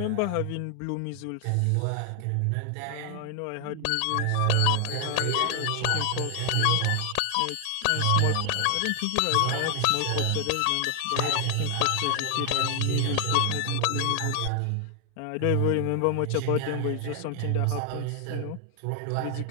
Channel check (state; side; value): different; both; correlation 0.00